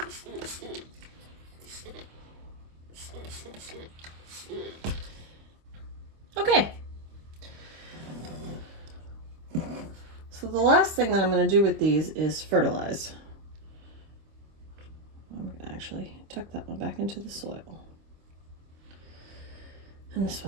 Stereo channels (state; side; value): late; left; 25 ms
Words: Okay. So the last thing that I'm going to do with these is fertilize. I'm going to actually tuck that one back into the soil. And this